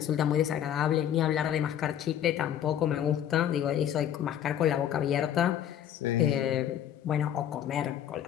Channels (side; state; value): right; quieter; 10.3 dB